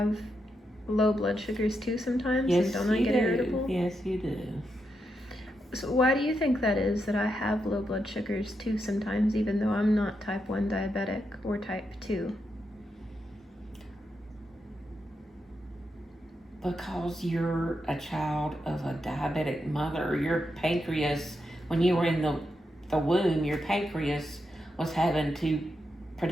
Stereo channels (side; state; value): both; normal; correlation 0.84